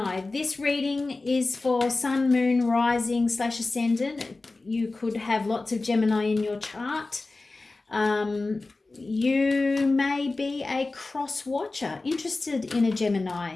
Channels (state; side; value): quieter; right; 3.4 dB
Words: This reading is for Sun, Moon, Rising / Ascendant. You could have lots of Gemini in your chart. You may be a cross watcher, interested in a Gemini.